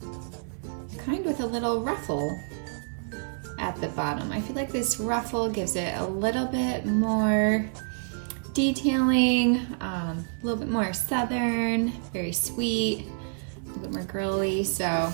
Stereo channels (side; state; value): left; silent; 59 dB below the other